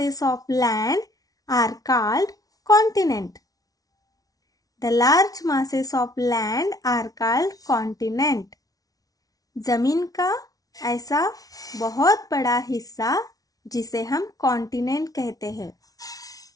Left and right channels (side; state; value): right; late; 0.18 ms